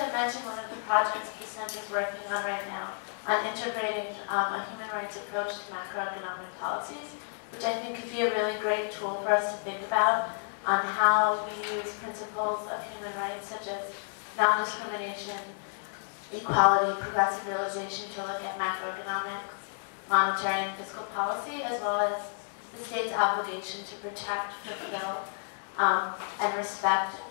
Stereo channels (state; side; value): silent; right; digital silence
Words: mention one of the projects the Center is working on right now on integrating a human rights approach to macroeconomic policies, which I think could be a really great tool for us to think about on how we use principles of human rights such as non-discrimination, equality, progressive realization to look at macroeconomics, monetary and fiscal policy, as well as the state's obligation to protect, fulfill, and respect